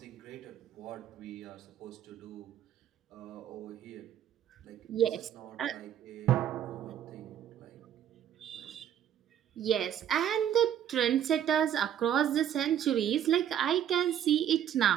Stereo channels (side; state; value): left; quieter; 10.1 dB